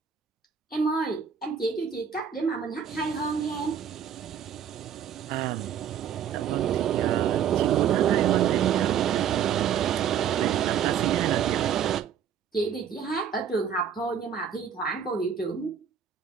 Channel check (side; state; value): left; quieter; 8.2 dB